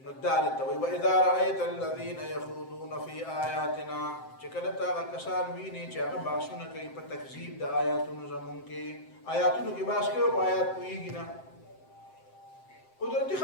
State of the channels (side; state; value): right; late; 7.7 ms